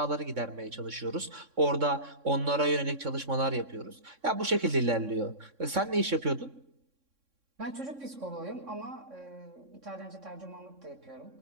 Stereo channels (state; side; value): late; left; 3.6 ms